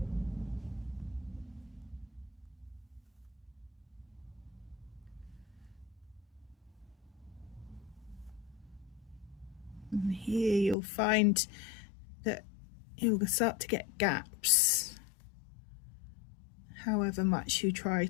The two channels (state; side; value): drops out; right; at 10.8 s